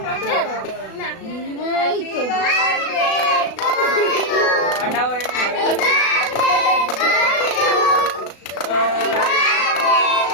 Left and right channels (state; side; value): late; right; 36 ms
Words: কাটা এই তো কাটাও